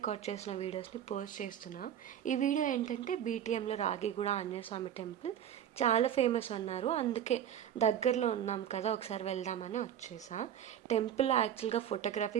చేసిన వీడియోస్ని పోస్ట్ చేస్తున్నా. ఈ వీడియో ఏంటంటే బీటీఎంలో రాగిగూడ ఆంజనేయ స్వామి టెంపుల్ చాలా ఫేమస్ అన్నారు. అందుకే దగ్గరలో ఉన్నాం కదా, ఒకసారి వెళ్దామని వచ్చేసా. టెంపుల్ యాక్చువల్గా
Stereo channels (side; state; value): left; quieter; 9.9 dB